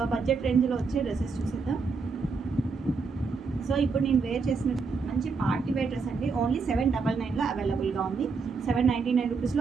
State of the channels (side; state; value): left; quieter; 4.7 dB